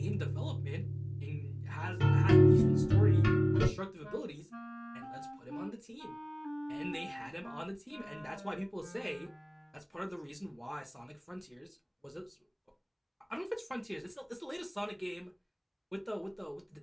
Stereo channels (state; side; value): identical; both; correlation 1.00